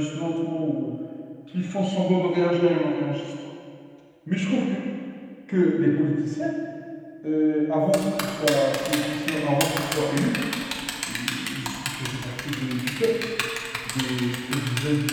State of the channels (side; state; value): both; identical; correlation 1.00